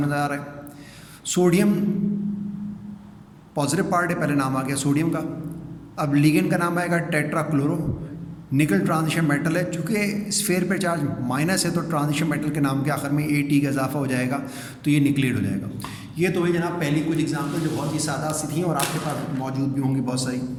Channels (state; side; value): identical; both; correlation 1.00